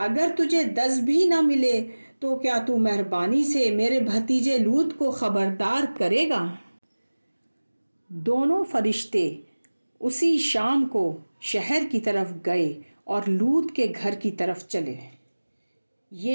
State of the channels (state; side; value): inverted; both; correlation -1.00